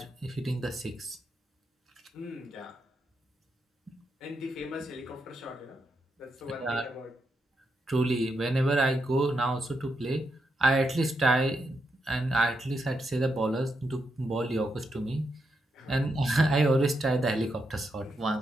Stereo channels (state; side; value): normal; both; correlation 0.83